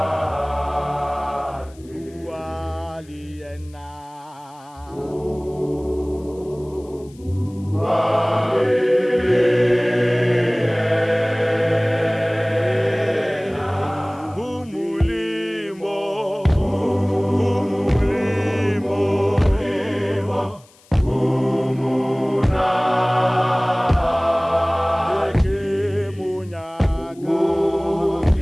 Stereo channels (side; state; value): left; noise; hiss, 28 dB below the sound